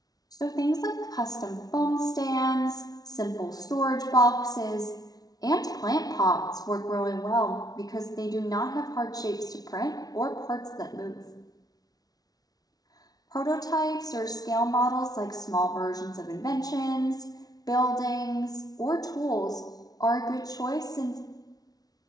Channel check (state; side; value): late; right; 0.19 ms